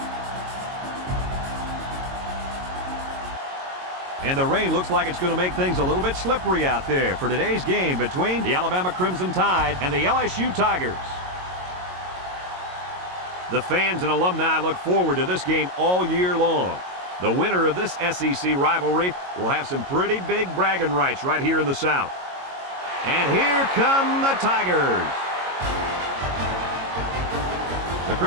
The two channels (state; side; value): late; left; 22 ms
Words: And the rain looks like it's going to make things a little bit slippery out there for today's game between the Alabama Crimson Tide and the LSU Tigers. The fans and alumni look forward to this game all year long. The winner of this SEC rivalry will have some pretty big bragging rights right here in the South. And here come the Tigers. The